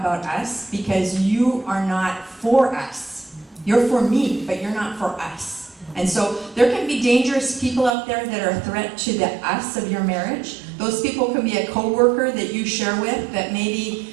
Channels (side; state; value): left; drops out; at 8.0 s